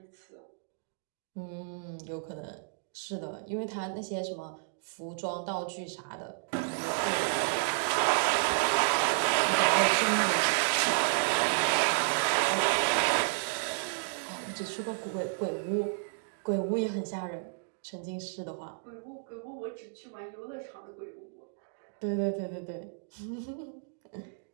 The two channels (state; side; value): silent; left; digital silence